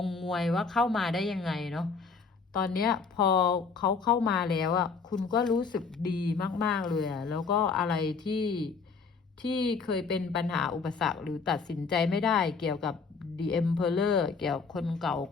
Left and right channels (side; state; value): right; quieter; 5.0 dB